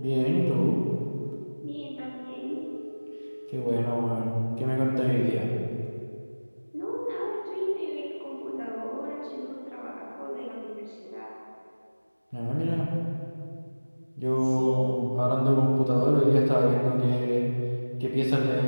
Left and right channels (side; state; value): both; inverted; correlation -1.00